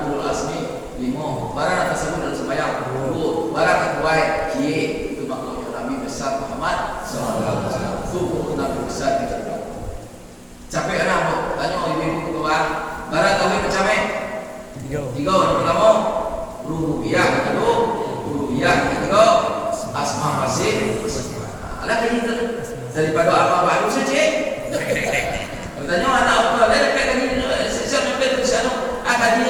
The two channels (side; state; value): both; identical; correlation 1.00